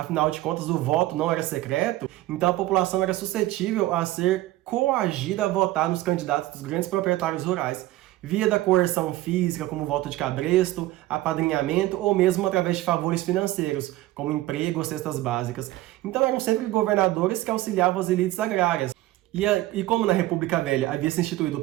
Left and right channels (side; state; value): left; quieter; 16.5 dB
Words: de contas, o voto não era secreto, então a população era suscetível a ser coagida a votar nos candidatos dos grandes proprietários rurais, via da coerção física, como voto de cabresto, apadrinhamento ou mesmo através de favores financeiros, como emprego ou cestas básicas. Então eram sempre governadores que auxiliavam as elites agrárias. E como na República Velha havia se instituído o